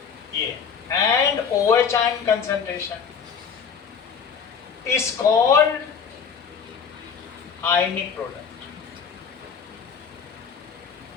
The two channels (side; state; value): right; quieter; 6.5 dB